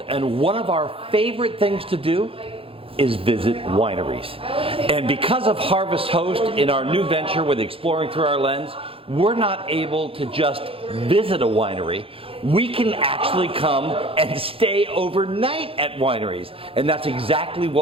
and one of our favorite things to do is visit wineries. And because of Harvest Host in our new venture with Exploring Through Our Lens, we're not able to just visit a winery. We can actually come and stay overnight at wineries. And that's exactly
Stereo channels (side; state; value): left; late; 0.27 ms